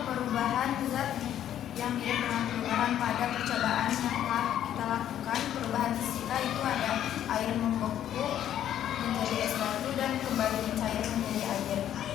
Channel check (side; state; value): right; quieter; 10.9 dB